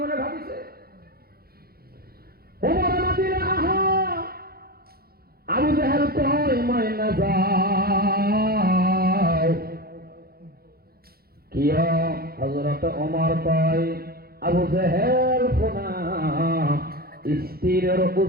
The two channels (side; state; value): left; late; 0.44 ms